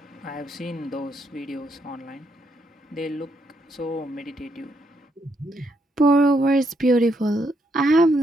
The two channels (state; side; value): normal; both; correlation 0.76